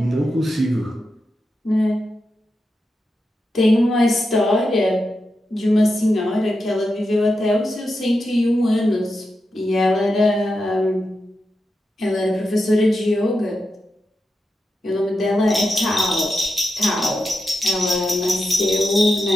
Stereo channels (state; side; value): normal; both; correlation 0.88